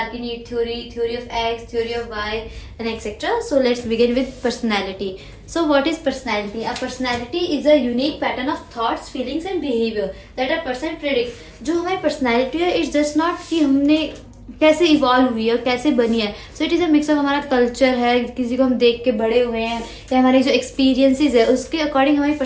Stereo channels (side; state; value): both; identical; correlation 1.00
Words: need theory, theory of X, theory of Y, and etc. So let's begin with personality. So what is personality? A personality is a unique pattern of thoughts, feelings and behavior that a person predicts. जो हमारी personality है, it's just not कि हमने कैसे evolve हुई है, कैसे बनी है. So it is a mix of हमारा कल्चर है, किसी को हम देख के बड़े हुए हैं, या हमारे जो एक्सपीरियंसेस है उसके अकॉर्डिंग हमारी